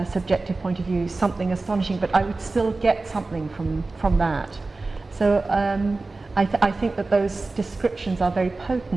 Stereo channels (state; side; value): quieter; left; 3.5 dB